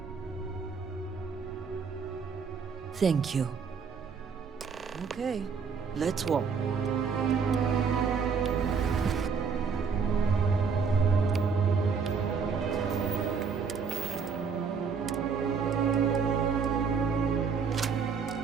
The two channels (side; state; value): left; quieter; 5.7 dB